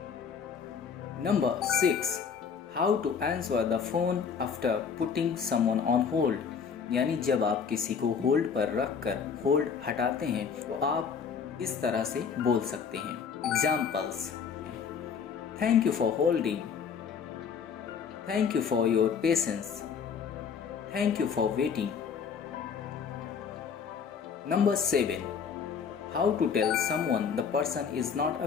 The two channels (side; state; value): right; quieter; 6.5 dB